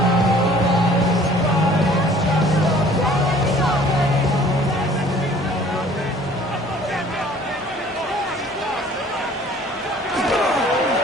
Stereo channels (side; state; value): both; normal; correlation 0.53